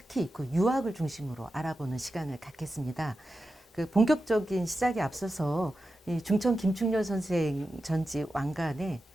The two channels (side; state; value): both; normal; correlation 0.91